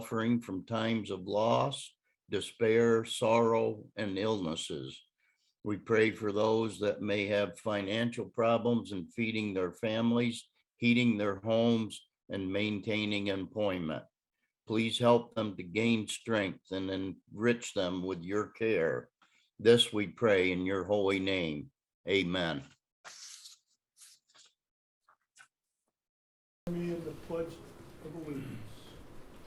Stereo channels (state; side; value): identical; both; correlation 1.00